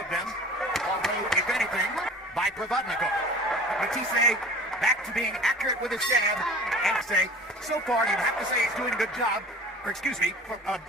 them, although, if anything, by Provodnikov. Matthysse back to being accurate with his jab, and say, so far you'd have to say he's doing a good job, or excuse me,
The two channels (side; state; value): both; normal; correlation 0.42